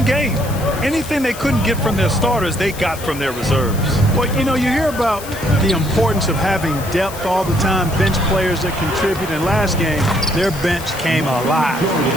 game. Anything they couldn't get from their starters, they got from their reserves. Well, you know, you hear about the importance of having depth all the time, bench players that contribute. In last game, their bench came alive.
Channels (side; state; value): left; noise; hiss, 14 dB below the sound